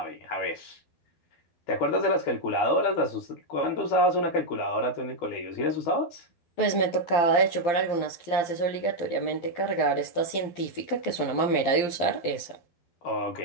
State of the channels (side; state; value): right; late; 12 ms